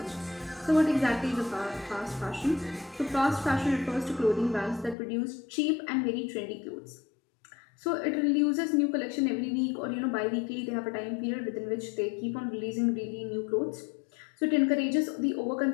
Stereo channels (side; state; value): right; drops out; at 5.0 s